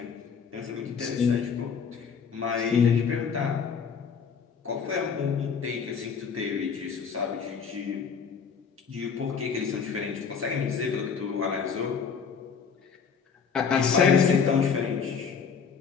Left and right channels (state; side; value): quieter; right; 6.3 dB